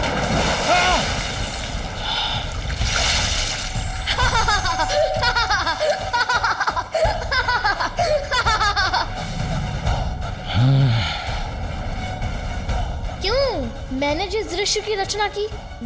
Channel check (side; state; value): both; identical; correlation 1.00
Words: क्यों? मैंने जिस दृश्य की रचना की